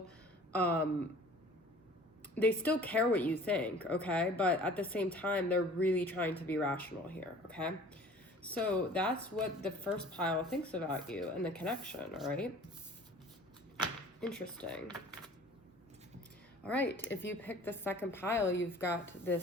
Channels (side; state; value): both; normal; correlation 0.47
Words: care what you think, okay? But at the same time, they're really trying to be rational here, okay? So that's what the first pile thinks about you and the connection, all right? Interesting. All right, if you pick the second pile, you've got